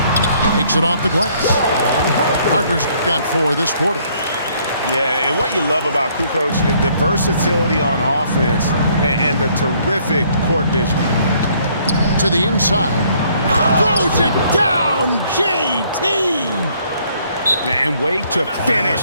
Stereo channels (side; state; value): both; inverted; correlation -0.64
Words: Takes it off the glass. Harper's got 4 this quarter. Yeah, and what you love about Kukoc, the versatility on offense and the terrific court vision. To the inside. Throws it down, JT! And wait to